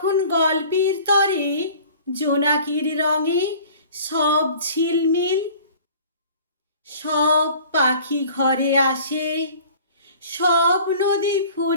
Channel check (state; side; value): inverted; both; correlation -0.47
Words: গল্পের তরে জোনাকির রঙে সব ঝিলমিল। সব পাখি ঘরে আসে, সব নদী